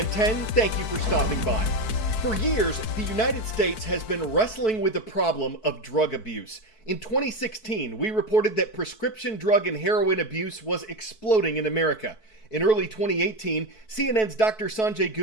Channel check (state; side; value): late; right; 4.6 ms